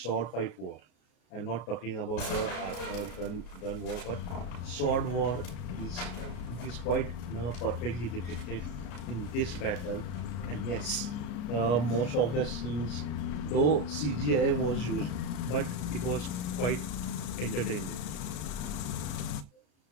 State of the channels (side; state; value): right; late; 33 ms